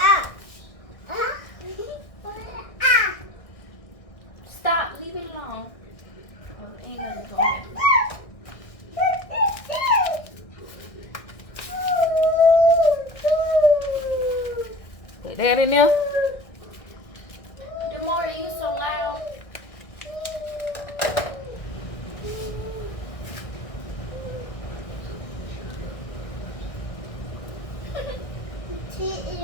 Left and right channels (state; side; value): late; right; 1.6 ms